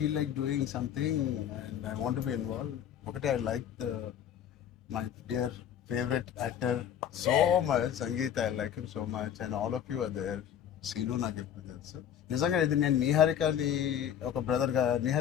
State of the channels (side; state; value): right; quieter; 9.5 dB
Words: like doing something and I want to be involve. ఒకటి, I like my dear favorite actor so much, Sangeet, I like him so much, and all of you are there. Seenu నాకు ఎప్పుడు తెలుసు. నిజంగా ఇది నేను నిహారికని ఒక బ్రదర్గా,